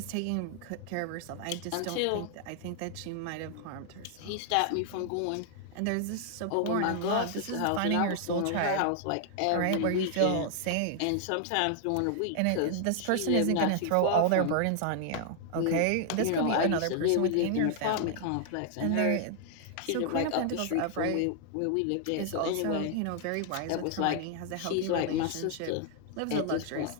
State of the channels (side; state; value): both; different; correlation 0.00